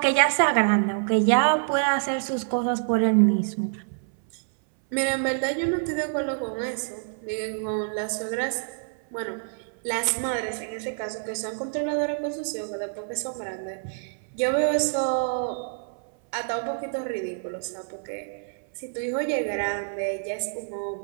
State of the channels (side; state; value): left; silent; 59 dB below the other